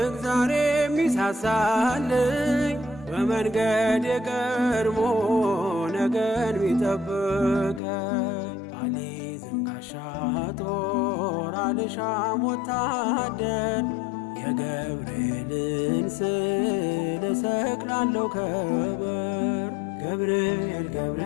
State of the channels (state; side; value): drops out; right; at 7.8 s